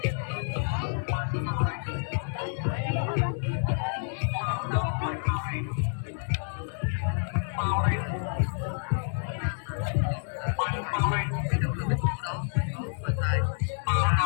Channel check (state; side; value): silent; right; 59 dB below the other